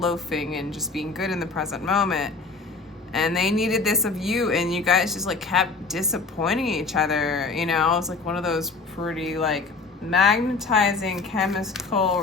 and just being good in the present moment. And they needed this of you, and you guys just like kept disappointing each other, you know. It was like one of those pretty like magnetizing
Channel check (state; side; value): quieter; right; 4.1 dB